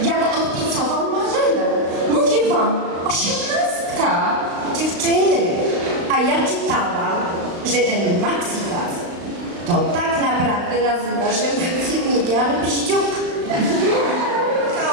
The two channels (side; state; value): left; late; 35 ms